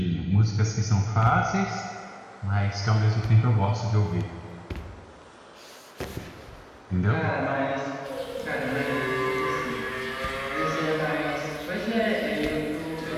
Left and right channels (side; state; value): both; identical; correlation 1.00